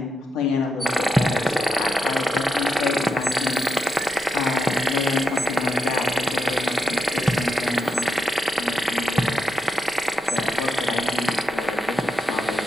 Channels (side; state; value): both; normal; correlation 0.85